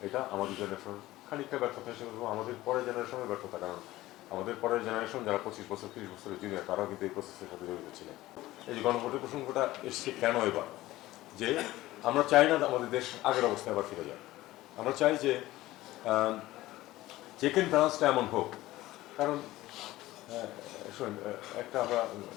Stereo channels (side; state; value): right; quieter; 16.9 dB